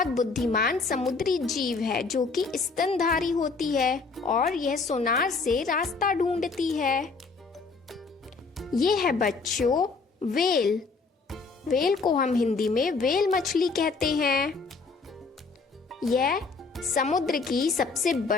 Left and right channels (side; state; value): right; quieter; 4.3 dB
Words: बुद्धिमान समुद्री जीव है जो कि स्तनधारी होती है और यह सोनार से रास्ता ढूंढती है। यह है बच्चों व्हेल। व्हेल को हम हिंदी में व्हेल मछली कहते हैं। यह समुद्र की सबसे